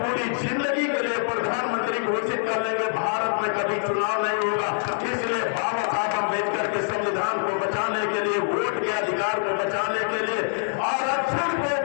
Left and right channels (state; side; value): silent; right; digital silence